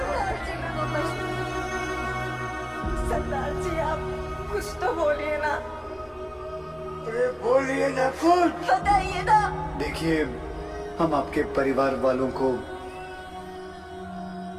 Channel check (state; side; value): identical; both; correlation 1.00